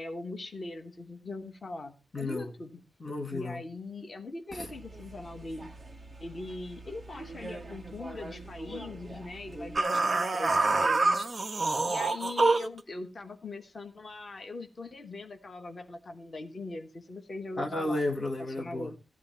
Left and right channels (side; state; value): both; normal; correlation 0.91